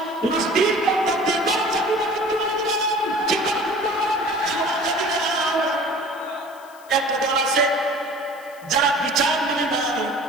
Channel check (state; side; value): noise; left; hiss, 25 dB below the sound